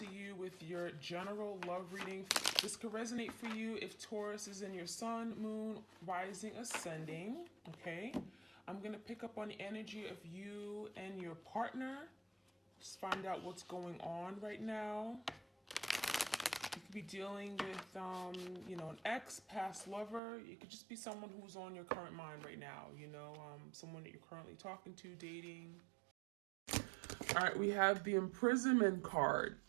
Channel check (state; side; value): drops out; left; at 20.2 s